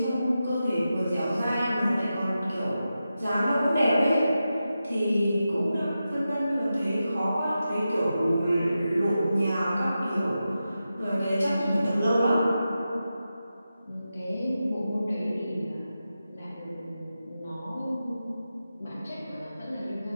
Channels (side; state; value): both; inverted; correlation -0.91